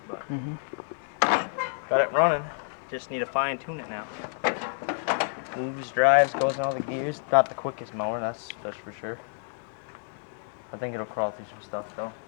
But got it running. Just need to fine tune it now. Moves, drives, goes in all the gears. Not the quickest mower, that's for sure. I think it'll crawl through some stuff though.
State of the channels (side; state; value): right; silent; 59 dB below the other